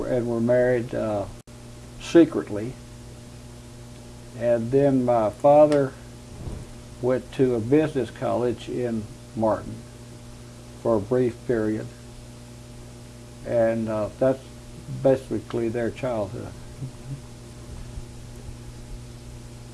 married secretly. And then my father went to a business college in Martin for a brief period, and that's basically their childhood.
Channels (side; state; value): both; identical; correlation 1.00